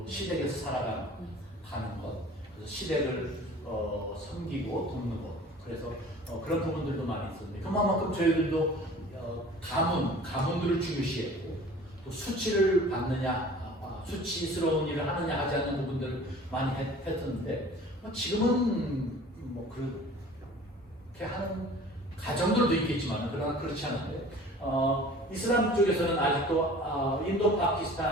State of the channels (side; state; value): both; normal; correlation 0.45